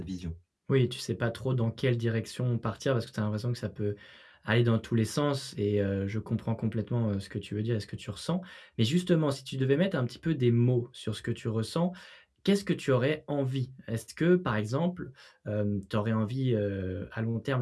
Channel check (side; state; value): both; identical; correlation 1.00